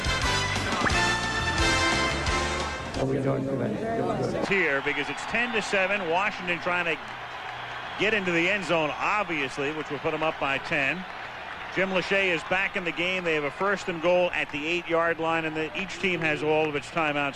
Here because it's 10-7. Washington trying to get into the end zone, obviously, which will put them up by 10. Jim Lachey is back in the game. They have a first and goal at the 8-yard line, and each team has all of its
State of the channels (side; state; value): both; identical; correlation 1.00